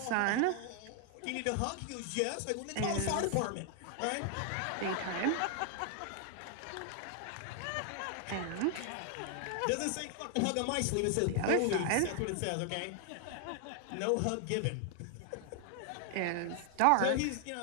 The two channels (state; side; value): different; both; correlation 0.00